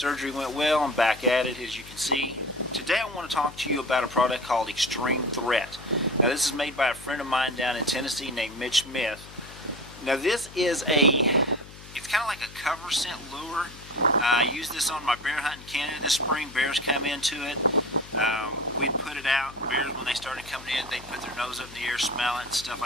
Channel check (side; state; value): left; noise; hum, 18 dB below the sound